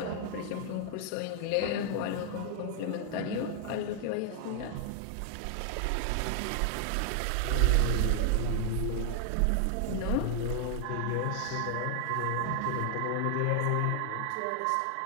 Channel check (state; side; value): different; both; correlation 0.00